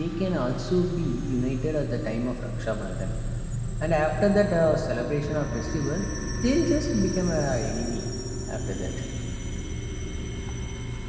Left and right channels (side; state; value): both; identical; correlation 1.00